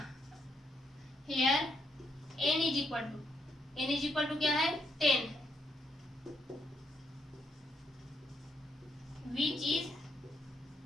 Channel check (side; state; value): both; normal; correlation 0.76